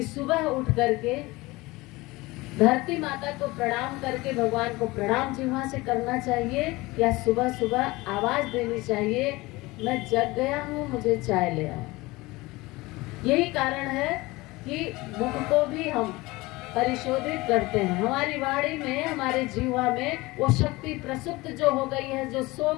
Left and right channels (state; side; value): quieter; right; 21.4 dB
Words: सुबह उठ करके धरती माता को प्रणाम करके भगवान को प्रणाम जीवा से करना चाहिए, या सुबह सुबह आवाज देनी चाहिए, मैं जग गया हूँ, मुझे चाय ले आओ। यही कारण है कि मुख को भी हम परिशोधित करते हैं। हमारी वाणी में, हमारे जीवा में वो शक्ति प्रसुप्त जो हो गई है, जो सो